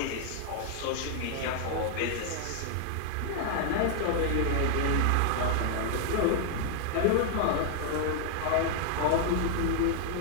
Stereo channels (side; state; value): both; different; correlation 0.00